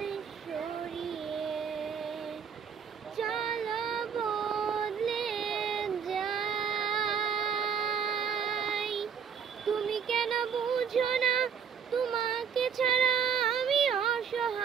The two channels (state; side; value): quieter; left; 7.1 dB